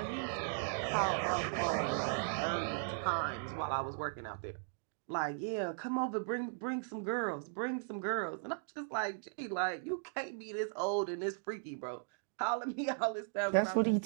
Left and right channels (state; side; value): silent; left; digital silence